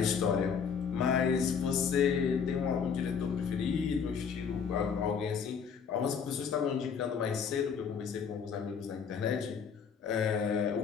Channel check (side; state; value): right; quieter; 6.6 dB